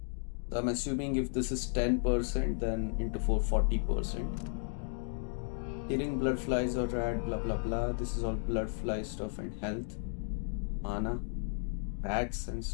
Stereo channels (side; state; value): right; silent; digital silence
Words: So I'm assuming if this is 10%, then into 4 40%. Killing blood flies or rad, blah blah blah. This is all blood fly stuff and health, mana, rats and